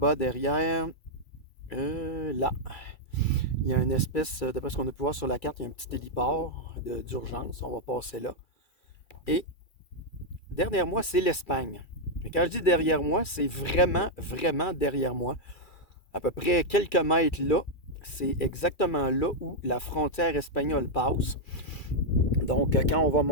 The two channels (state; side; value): late; right; 2.3 ms